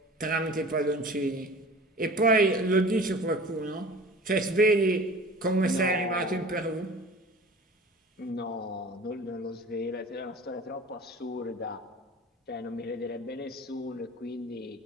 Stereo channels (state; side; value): normal; both; correlation 0.41